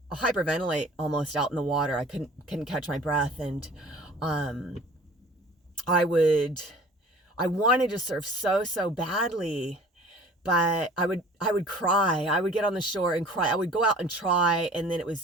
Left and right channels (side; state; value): both; normal; correlation 0.47